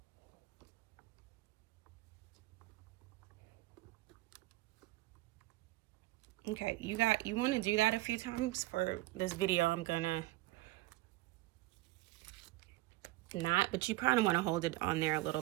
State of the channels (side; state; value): left; quieter; 18.3 dB